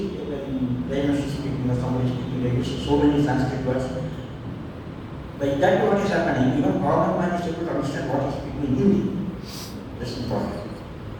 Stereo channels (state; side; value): identical; both; correlation 1.00